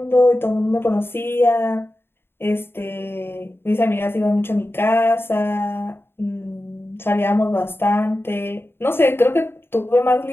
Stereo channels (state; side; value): late; right; 0.11 ms